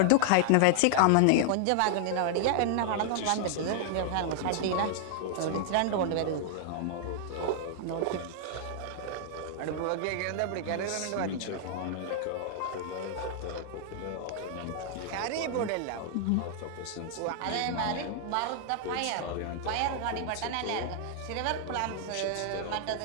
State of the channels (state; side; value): different; both; correlation -0.01